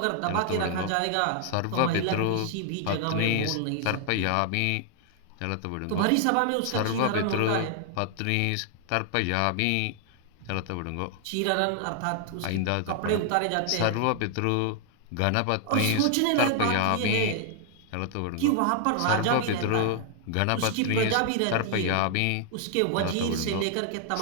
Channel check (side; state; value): both; different; correlation 0.00